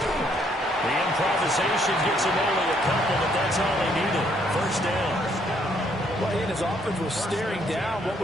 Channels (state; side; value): normal; both; correlation 0.69